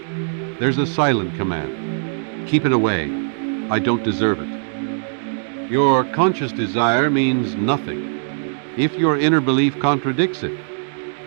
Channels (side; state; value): left; silent; digital silence